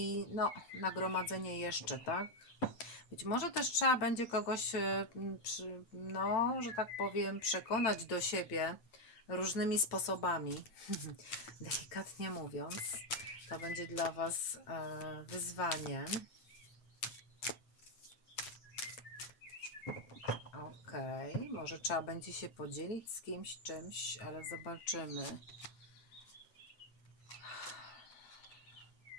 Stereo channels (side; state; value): right; late; 8.8 ms